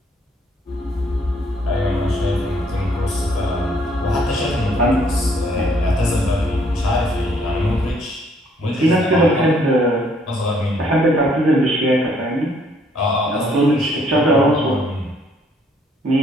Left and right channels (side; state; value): both; normal; correlation 0.65